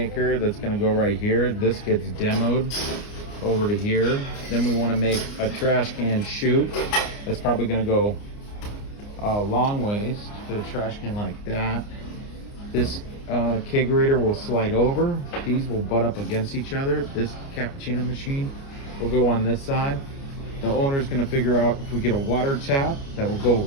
that's gonna go right here. This gets demoed over to here. Then we wanna make a trash can chute. That's probably gonna go a long ways to the trash can like that. This kegerator will slide over. These will butt up against each other. This cappuccino machine will go on this side. The owner's gonna figure out if we get a water tap that will go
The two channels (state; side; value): late; right; 29 ms